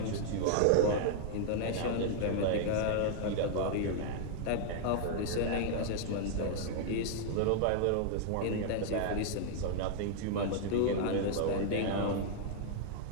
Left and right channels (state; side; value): different; both; correlation -0.01